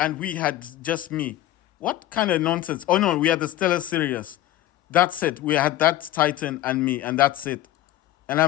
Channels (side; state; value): right; quieter; 14.4 dB